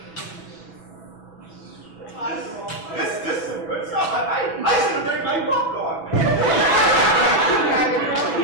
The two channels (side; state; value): right; late; 6.0 ms